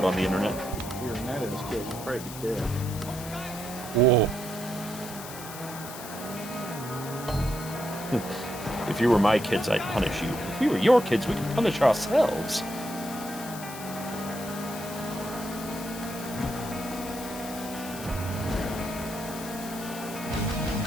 on the internet. If we were Night Owls kids, we'd probably be dead. Whoa. If you were my kids, I'd punish you. If we were your kids, we could punish ourselves.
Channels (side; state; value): left; noise; hiss, 12 dB below the sound